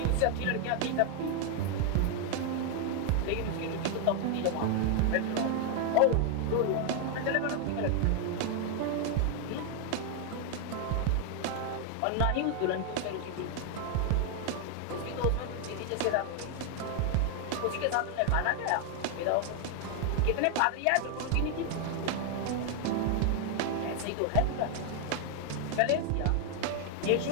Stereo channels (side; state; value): both; different; correlation 0.01